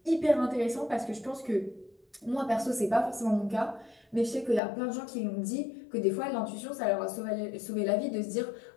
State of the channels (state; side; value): drops out; right; at 4.6 s